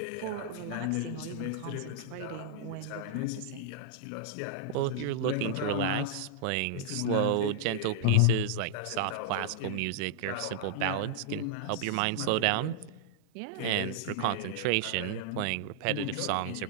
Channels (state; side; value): different; both; correlation -0.01